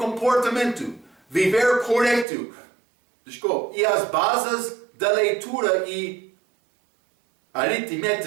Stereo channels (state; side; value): drops out; left; at 2.2 s